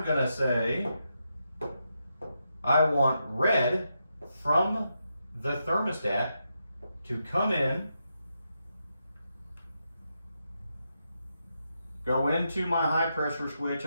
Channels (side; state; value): both; inverted; correlation -0.84